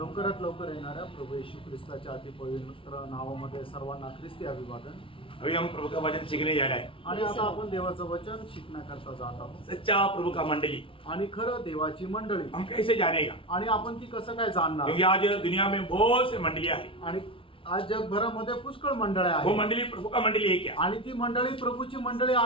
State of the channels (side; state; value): right; late; 0.25 ms